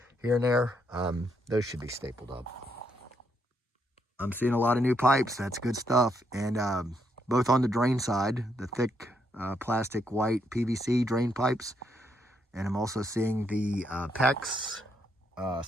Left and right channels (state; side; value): normal; both; correlation 0.76